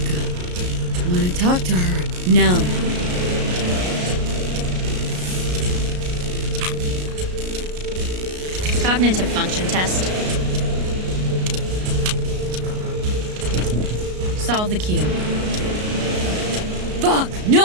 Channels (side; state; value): left; late; 33 ms